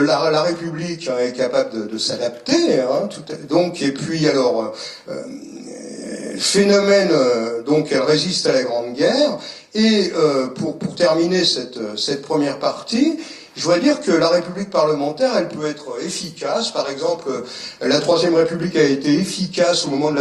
République est capable de s'adapter, donc, et puis alors, phénomène, donc elle résiste à la Grande Guerre, et pour terminer cette première partie, je voudrais dire que la République parlementaire, elle peut être efficace. Par exemple, la Troisième République a été efficace au moment de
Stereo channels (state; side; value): identical; both; correlation 1.00